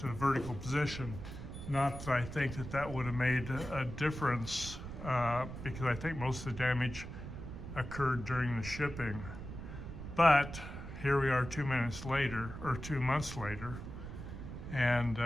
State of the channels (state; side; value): noise; right; rumble, 9 dB below the sound